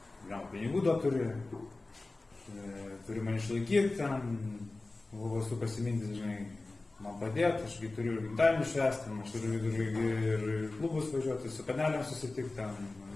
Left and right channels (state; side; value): quieter; right; 3.2 dB